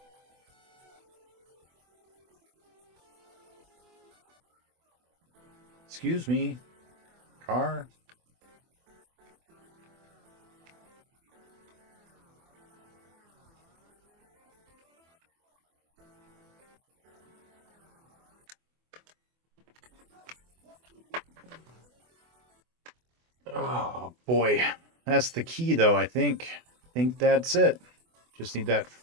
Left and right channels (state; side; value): late; left; 24 ms